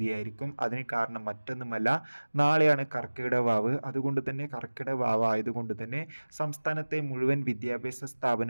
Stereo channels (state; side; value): inverted; both; correlation -1.00